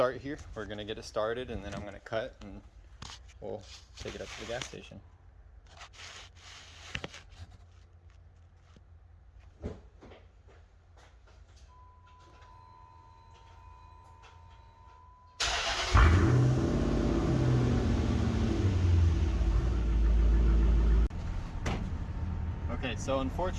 here. We're gonna get it started, and then I'm gonna cut and we'll take it up to the gas station. Okay, so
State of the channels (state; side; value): identical; both; correlation 1.00